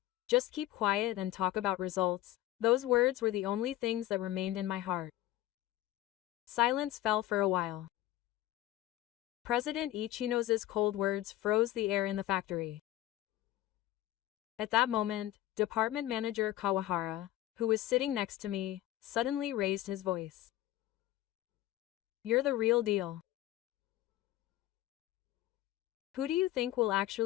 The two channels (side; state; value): right; quieter; 14.8 dB